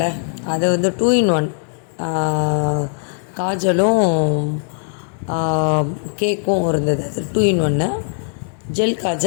அது வந்து 2 in 1 காஜலும் கேக்கும் இருந்தது. அது 2 in 1 ஜெல்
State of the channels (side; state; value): right; silent; digital silence